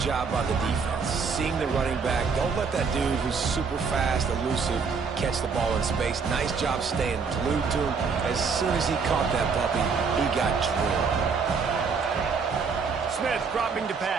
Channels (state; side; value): quieter; left; 5.3 dB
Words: by the defense. Seeing the running back. Don't let that dude who's super fast, elusive, catch the ball in space. Nice job staying glued to him. As soon as he caught that puppy, he got drilled. Smith dropping to